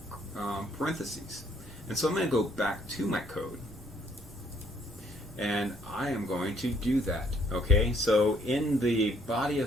parentheses. And so I'm going to go back to my code, and I am going to do that. Okay, so in the body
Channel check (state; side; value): normal; both; correlation 0.66